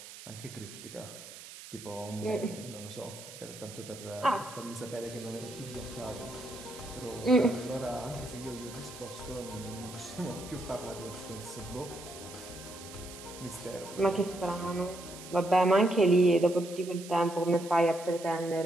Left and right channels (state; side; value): noise; right; hiss, 15 dB below the sound